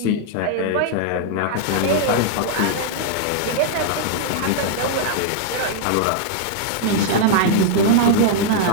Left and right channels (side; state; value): both; different; correlation -0.01